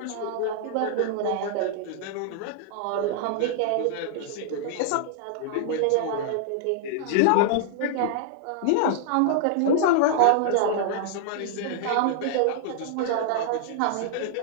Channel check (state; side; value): different; both; correlation -0.01